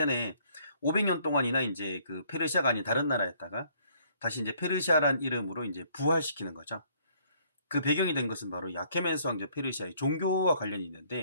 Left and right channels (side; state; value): both; inverted; correlation -0.64